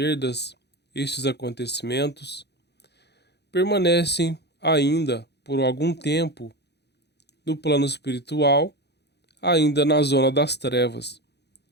estes acontecimentos, permanecem ainda por algum tempo no plano espiritual, ainda na zona das trevas.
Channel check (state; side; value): late; right; 0.49 ms